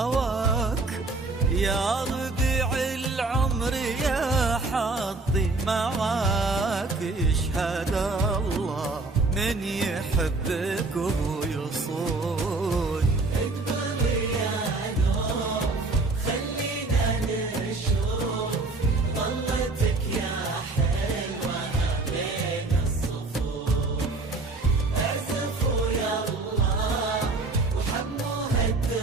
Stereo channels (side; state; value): left; quieter; 3.4 dB